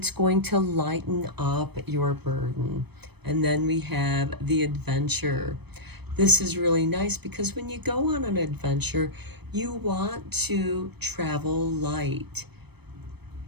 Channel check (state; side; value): late; left; 0.98 ms